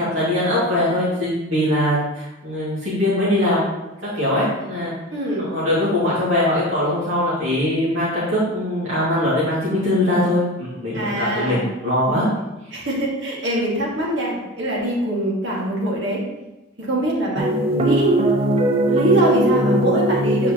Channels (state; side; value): normal; both; correlation 0.32